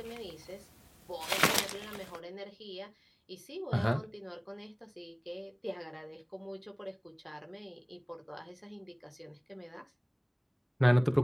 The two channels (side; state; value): both; identical; correlation 1.00